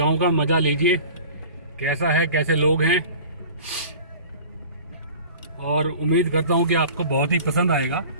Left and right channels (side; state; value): both; inverted; correlation -0.42